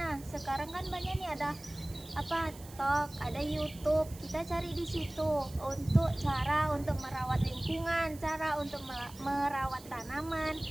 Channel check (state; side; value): noise; right; hiss, 19 dB below the sound